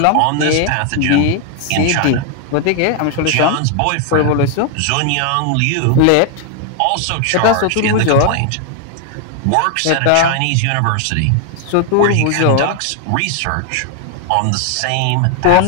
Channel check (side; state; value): both; different; correlation 0.00